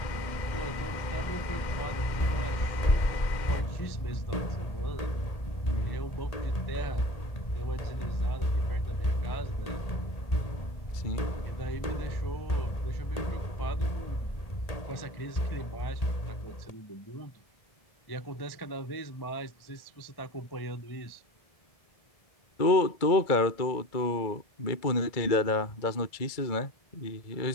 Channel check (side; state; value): right; late; 2.2 ms